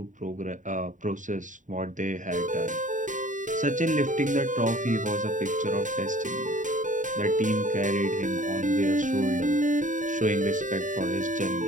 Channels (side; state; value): left; late; 0.37 ms